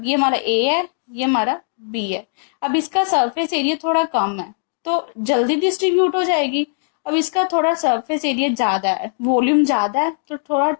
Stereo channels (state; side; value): silent; right; digital silence